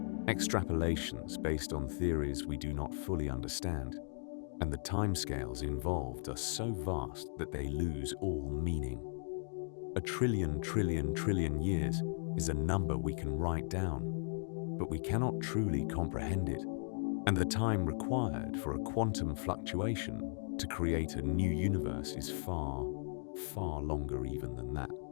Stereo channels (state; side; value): silent; right; 53 dB below the other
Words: extrapolations based on theories we do not fully understand, and the timescales involved are so vast that they lose all meaning. A trillion years is a number we can write down, but we cannot truly comprehend it, and the time required for a quantum fluctuation to create a new universe is far, far longer even than that.